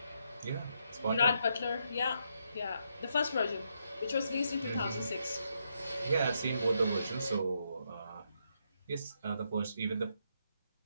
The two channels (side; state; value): both; inverted; correlation -0.79